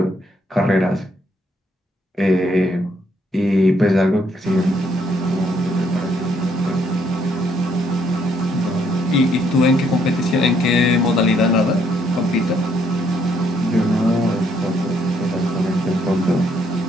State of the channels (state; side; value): normal; both; correlation 0.70